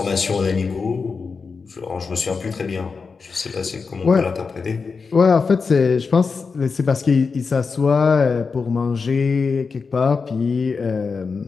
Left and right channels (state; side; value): quieter; right; 4.9 dB